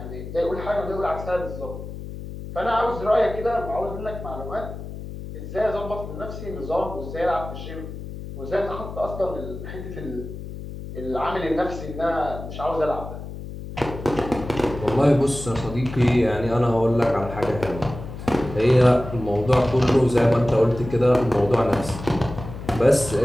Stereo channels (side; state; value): left; noise; hum, 10 dB below the sound